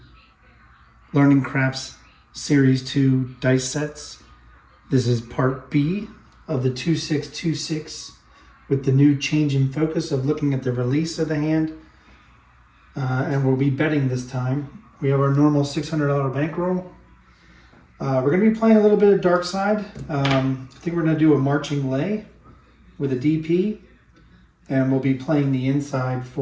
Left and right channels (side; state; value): both; identical; correlation 1.00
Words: Learning Craps Series 2 dice sets. This is part B of the 2626 with the new change in focus of looking at the release of the hand. And we'll be betting this time. We have our normal $600 bankroll. We're going to be playing a little bit of dark side. I think we're going to do a marching lay with a DP. And we'll be playing the inside